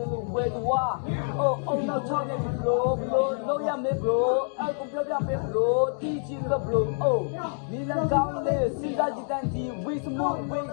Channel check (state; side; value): silent; right; 60 dB below the other